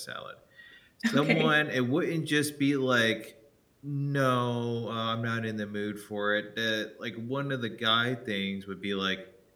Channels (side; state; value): both; identical; correlation 1.00